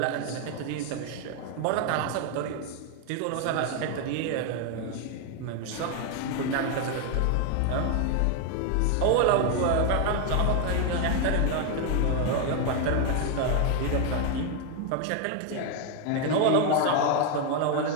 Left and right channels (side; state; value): both; different; correlation 0.01